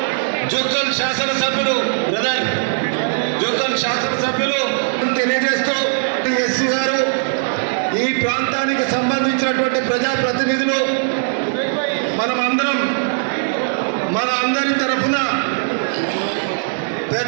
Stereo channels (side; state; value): left; silent; digital silence